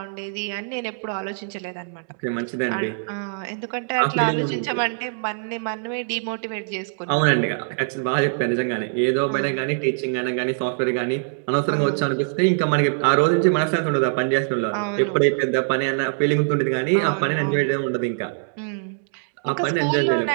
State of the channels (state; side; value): silent; left; digital silence